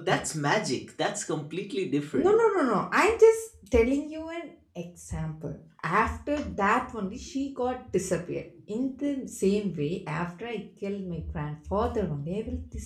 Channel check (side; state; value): both; identical; correlation 1.00